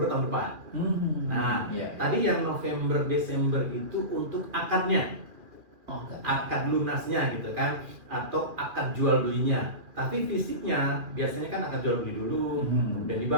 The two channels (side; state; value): left; late; 2.4 ms